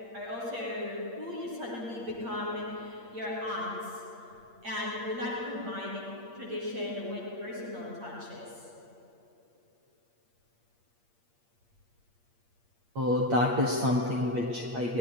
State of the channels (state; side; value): late; left; 8.6 ms